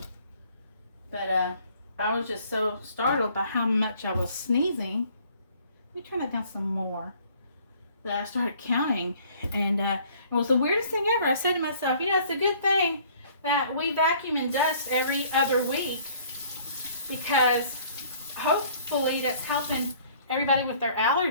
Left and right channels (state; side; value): inverted; both; correlation -0.57